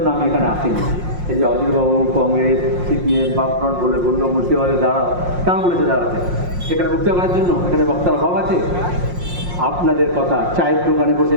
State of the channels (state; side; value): late; left; 5.6 ms